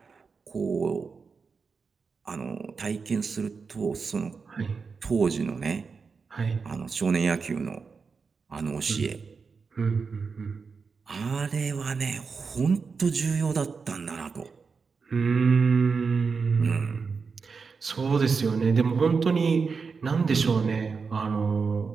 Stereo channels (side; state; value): left; quieter; 5.1 dB